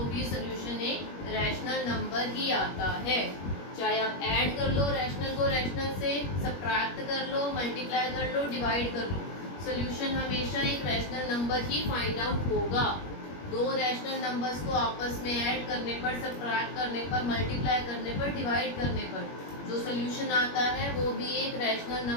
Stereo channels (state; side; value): late; right; 21 ms